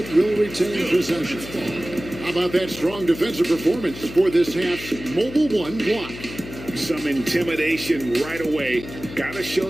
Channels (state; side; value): noise; left; hum, 13 dB below the sound